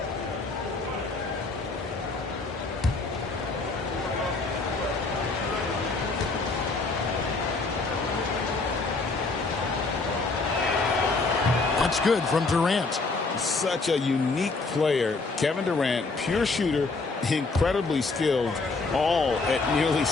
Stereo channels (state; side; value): quieter; right; 3.8 dB